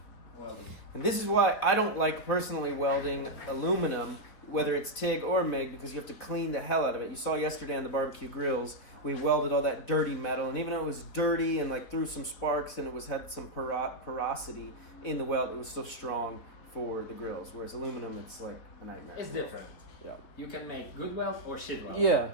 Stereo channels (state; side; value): late; right; 4.0 ms